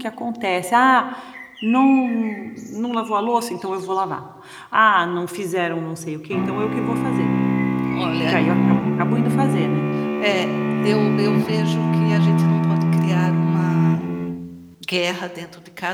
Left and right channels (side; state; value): both; identical; correlation 1.00